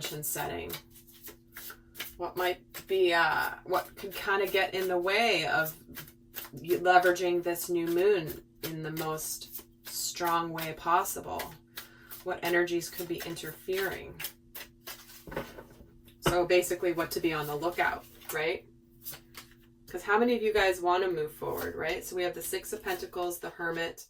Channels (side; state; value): both; identical; correlation 1.00